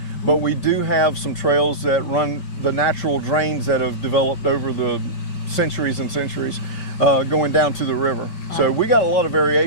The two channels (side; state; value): right; late; 5.2 ms